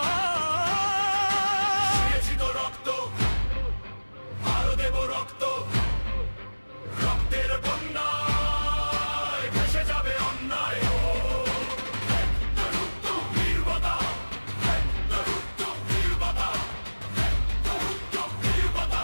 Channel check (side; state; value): both; inverted; correlation -1.00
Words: দিয়েছি তো রক্ত, আরো দেব রক্ত। রক্তের বন্যায় ভেসে যাবে অন্যায়। নির্বতা, নির্বতা,